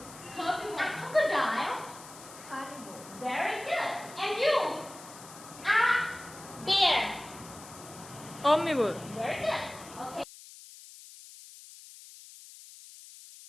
A crocodile. Carnivore. Very good. And you, a bear. Omnivore. Very good. Okay.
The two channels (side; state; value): left; noise; hiss, 17 dB below the sound